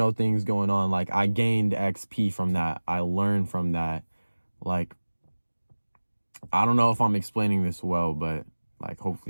thing's going on. Like I gained XP from that. I learned from that. Like, I don't know if I'm explaining this well, but like,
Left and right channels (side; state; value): both; inverted; correlation -1.00